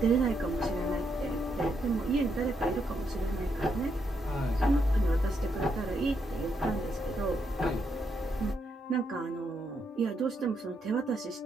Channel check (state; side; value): normal; both; correlation 0.79